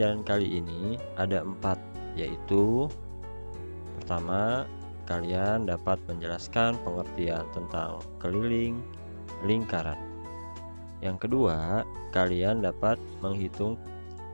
kali ini ada 4, yaitu pertama, kalian dapat menjelaskan pengertian tentang keliling lingkaran. Yang kedua, kalian dapat menghitung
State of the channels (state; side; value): inverted; both; correlation -1.00